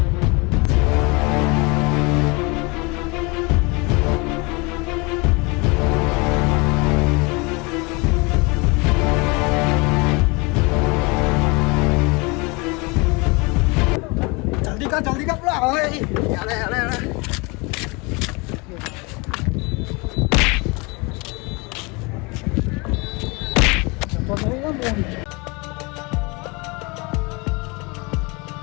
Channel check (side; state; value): right; quieter; 27.9 dB